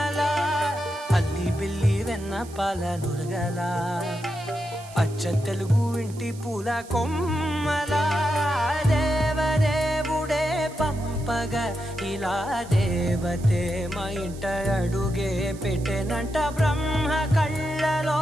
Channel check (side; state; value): right; noise; hiss, 20 dB below the sound